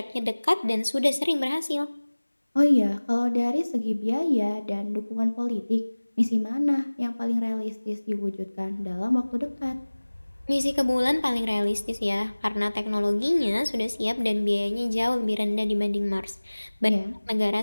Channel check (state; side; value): inverted; both; correlation -1.00